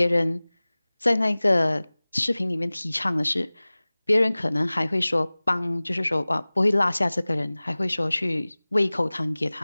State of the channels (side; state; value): both; inverted; correlation -0.99